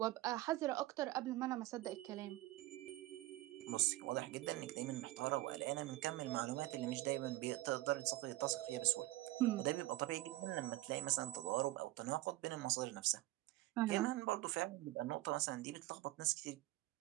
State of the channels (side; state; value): left; quieter; 17.5 dB